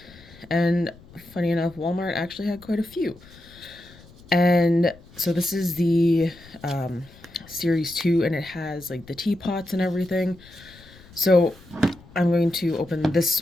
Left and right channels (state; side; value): noise; left; rumble, 23 dB below the sound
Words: and funny enough, Walmart actually had quite a few. And so this is the series 2, and it has like the teapots and everything. So I'm going to open